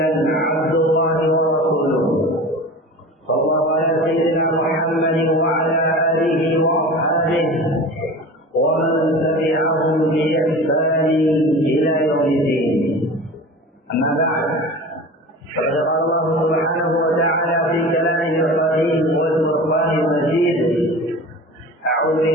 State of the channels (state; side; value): normal; both; correlation 0.35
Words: عبد الله ورسوله صلى الله على سيدنا محمد وعلى اله واصحابه ومن تبعهم باحسان الى يوم الدين. اما بعد فقد قال الله سبحانه وتعالى في كلامه القديم والفرقان المجيد: اعوذ